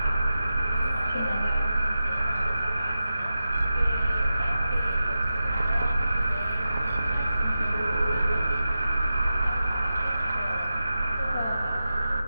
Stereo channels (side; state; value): both; inverted; correlation -0.92